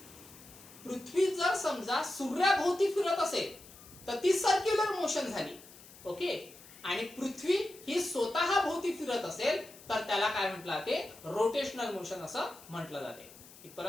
पृथ्वी जर समजा सूर्याभोवती फिरत असेल तर ती सर्क्युलर मोशन झाली. ओके, आणि पृथ्वी ही स्वतः भोवती फिरत असेल तर त्याला काय म्हटलं जाते रोटेशनल मोशन असं म्हटलं जाते.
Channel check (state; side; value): noise; left; hiss, 20 dB below the sound